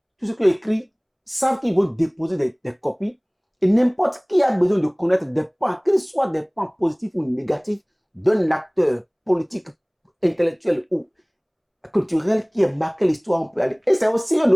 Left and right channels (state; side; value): identical; both; correlation 1.00